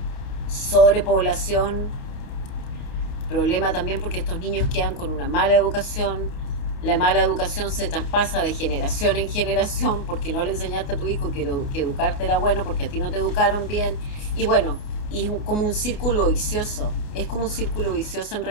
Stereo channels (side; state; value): right; late; 29 ms